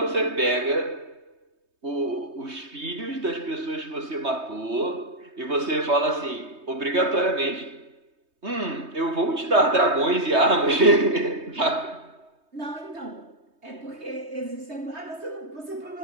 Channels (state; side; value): late; left; 3.2 ms